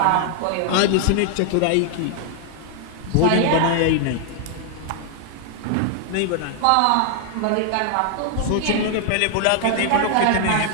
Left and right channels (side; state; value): both; different; correlation 0.00